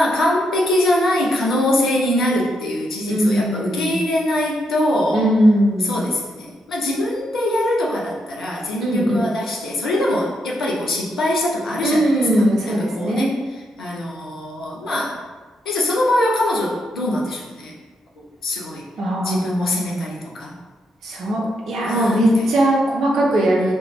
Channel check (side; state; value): both; normal; correlation 0.79